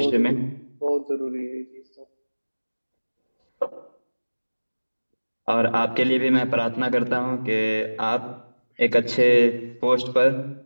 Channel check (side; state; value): both; inverted; correlation -1.00